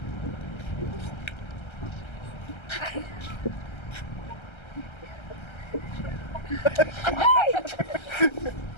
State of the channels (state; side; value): late; right; 1.3 ms